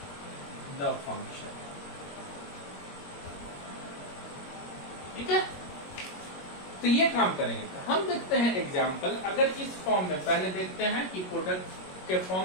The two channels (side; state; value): right; late; 21 ms